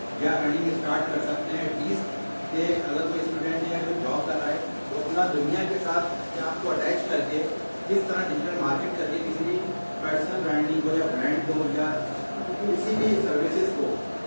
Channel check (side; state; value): both; inverted; correlation -1.00